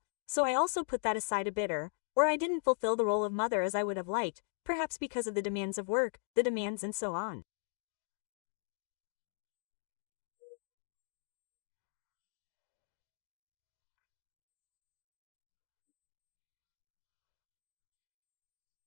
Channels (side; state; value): right; silent; digital silence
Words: so I also put that aside a bit or I didn't fulfill the role of mother as I would have liked, perhaps because of the demands of work, the demands and so on.